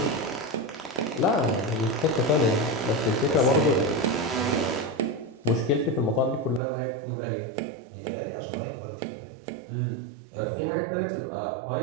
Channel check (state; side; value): drops out; left; at 6.6 s